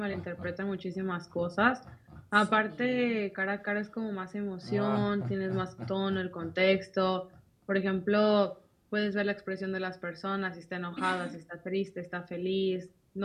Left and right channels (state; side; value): identical; both; correlation 1.00